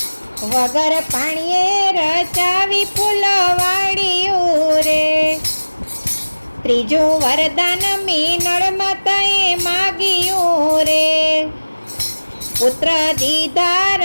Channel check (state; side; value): inverted; both; correlation -1.00